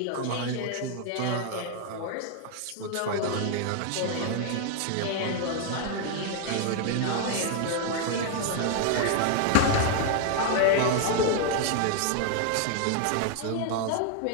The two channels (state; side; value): different; both; correlation 0.00